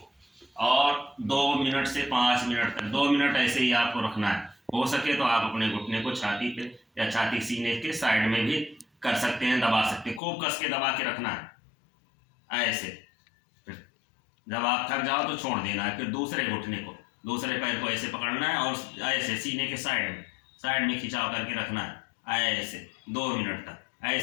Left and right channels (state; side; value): drops out; right; at 10.2 s